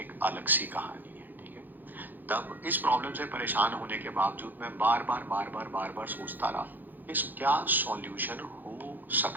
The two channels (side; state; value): left; late; 0.087 ms